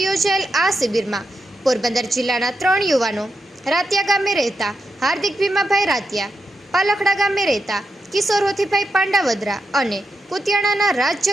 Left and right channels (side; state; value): both; normal; correlation 0.85